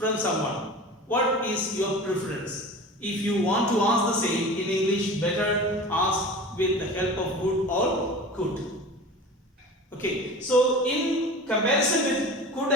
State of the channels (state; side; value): normal; both; correlation 0.36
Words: someone, what is your preference? If you want to ask the same in English, better ask with the help of would or could. Okay, so in comparison with could